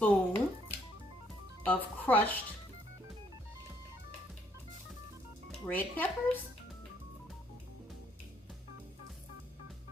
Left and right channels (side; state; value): both; normal; correlation 0.68